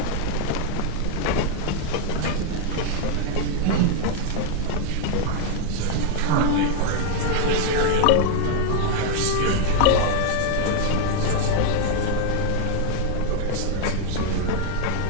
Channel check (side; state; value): both; different; correlation 0.00